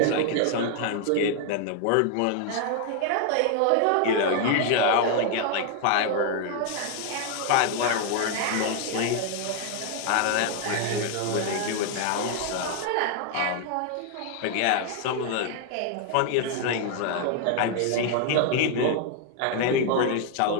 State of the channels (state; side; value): different; both; correlation 0.00